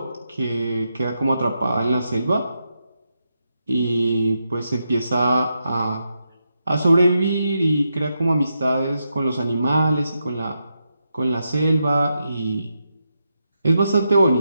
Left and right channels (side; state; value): both; inverted; correlation -0.85